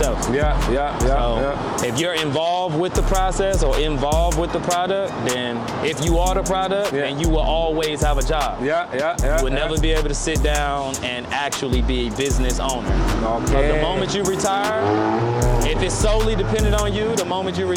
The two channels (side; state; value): both; identical; correlation 1.00